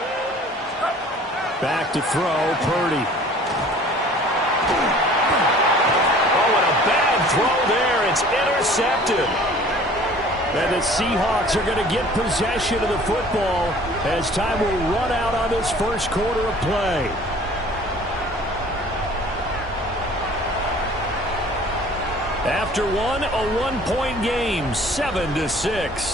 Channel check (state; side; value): normal; both; correlation 0.49